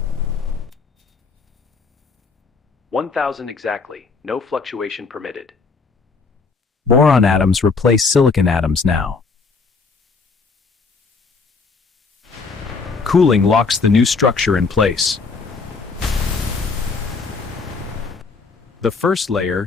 1,000 exactly, no fluctuation permitted. Boron atoms replace silicon atoms now. Cooling locks the new structure in place. The first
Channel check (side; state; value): right; quieter; 4.5 dB